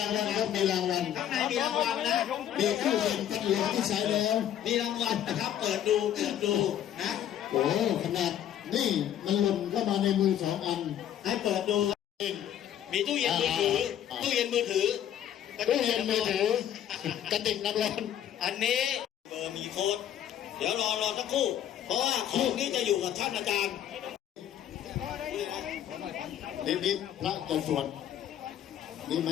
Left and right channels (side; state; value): right; quieter; 10.6 dB